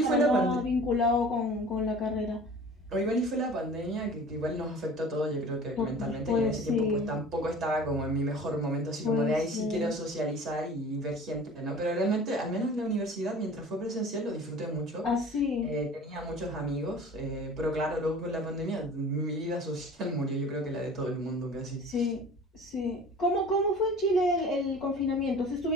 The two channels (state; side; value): normal; both; correlation 0.43